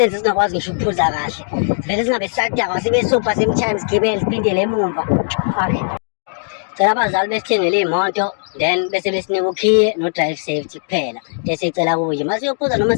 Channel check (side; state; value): right; silent; digital silence